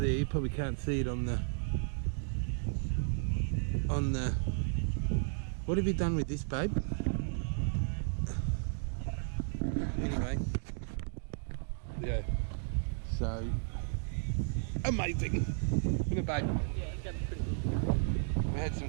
You probably can't see it on the... What have you done with this, babe? Anyway. Yeah. So... Amazing! Isn't it, babe? Yeah, it's going pretty good. We had some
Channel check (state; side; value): silent; left; digital silence